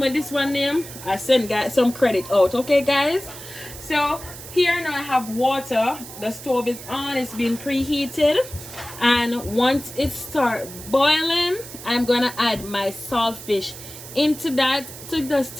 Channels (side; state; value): right; noise; hiss, 14 dB below the sound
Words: this one name, I send guys some credit out. Okay guys? So here now I have water. The stove is on, it's been preheated, and once it starts boiling, I'm gonna add my saltfish into that to just